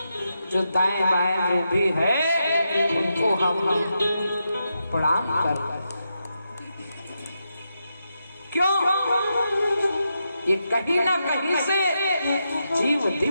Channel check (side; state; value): both; inverted; correlation -0.85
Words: जो दाएं बाएं जो भी है उनको हम प्रणाम कर। क्यों? ये कहीं ना कहीं से जीव